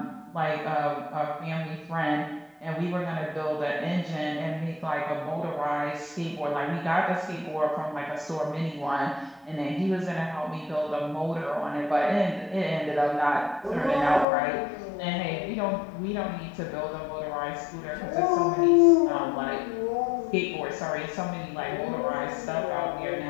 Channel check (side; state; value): right; drops out; at 14.2 s